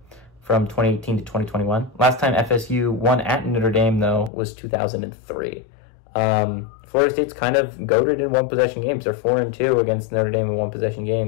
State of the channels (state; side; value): drops out; right; at 4.3 s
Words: from 2018 to 2021. Last time FSU won at Notre Dame, though, was 2003. Florida State's kind of goated in one-possession games. They're 4-2 against Notre Dame in one-possession